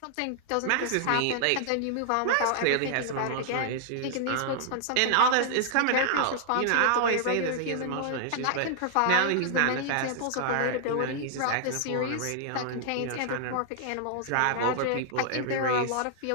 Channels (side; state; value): both; different; correlation -0.01